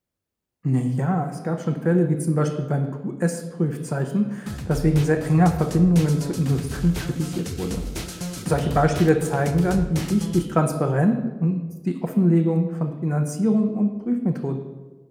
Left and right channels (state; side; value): identical; both; correlation 1.00